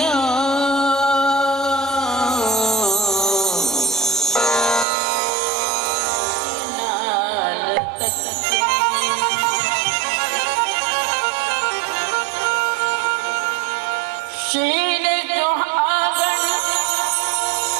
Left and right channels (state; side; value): drops out; left; at 4.9 s